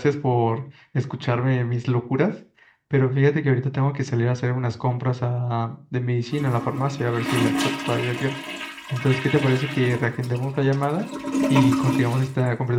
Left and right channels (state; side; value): identical; both; correlation 1.00